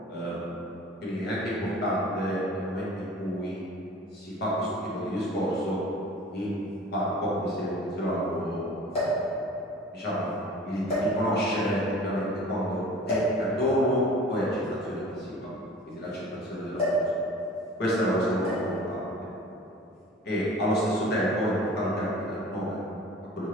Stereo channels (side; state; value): both; normal; correlation 0.44